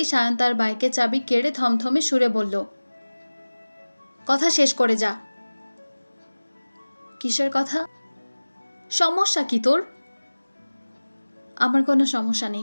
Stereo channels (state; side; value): inverted; both; correlation -1.00